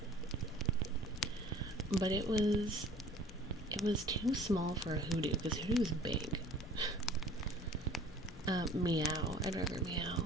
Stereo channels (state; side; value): normal; both; correlation 0.48